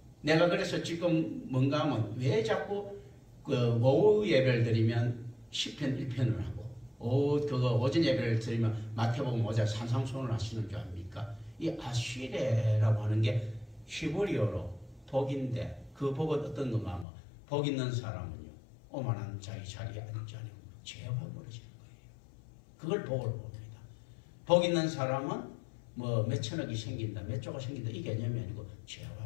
내가 그래서 지금 뭔가 하면 왜 자꾸 그 오후 예배를 드리면 10편 1편을 하고, 오전 예배를 드리면 마태복음 5장 산상수훈을 하시는 줄 압니까? 이 아쉬레라고 하는 게 히브리어로 복인데, 그 복은 어떤 건가 하면, 복 있는 사람은요, 오만한 자기 자리에 앉지 않고 죄가 벌어지는 거예요. 그걸 복을 봅니다. 복 있는 사람은 뭐 몇천억이 생긴다, 몇 조가 생긴다, 이 개념이 아니고 죄가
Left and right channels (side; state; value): right; drops out; at 17.1 s